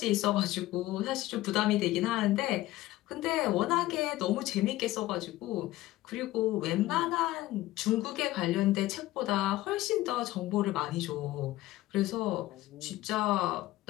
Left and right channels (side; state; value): right; quieter; 16.6 dB